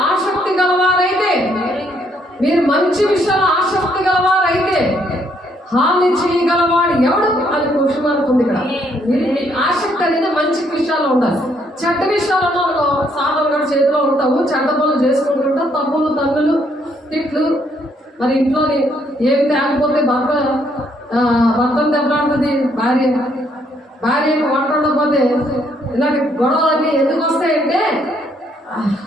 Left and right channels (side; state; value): both; normal; correlation 0.70